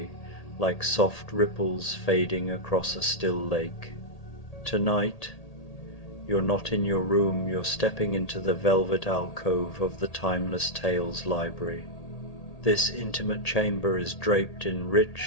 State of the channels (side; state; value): right; late; 1.8 ms